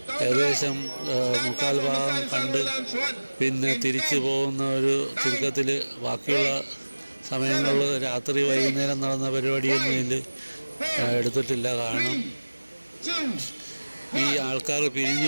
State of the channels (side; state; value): both; inverted; correlation -1.00